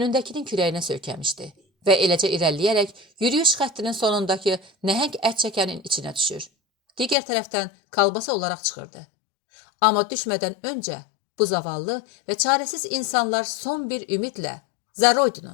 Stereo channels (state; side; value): drops out; right; at 7.2 s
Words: kürəyinə söykəmişdi və eləcə irəliləyərək yürüyüş xəttinin sonundakı nəhəng ət çəkənin içinə düşür. Digər tərəfdən kalbasa olaraq çıxırdı. Amma düşmədən öncə bu zavallı və çarəsiz insanlar son bir ümidlə "Za